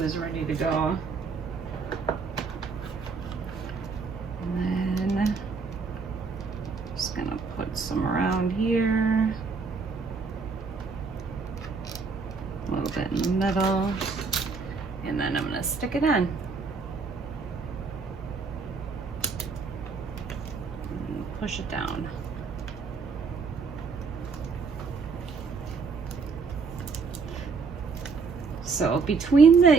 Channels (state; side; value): quieter; left; 4.8 dB